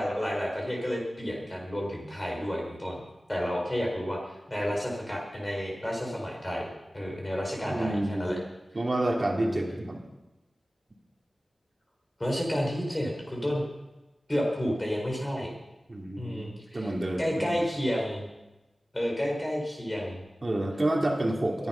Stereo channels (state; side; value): normal; both; correlation 0.96